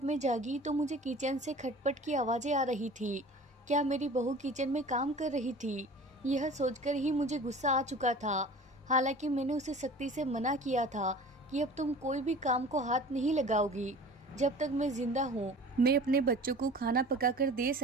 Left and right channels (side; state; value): both; normal; correlation 0.42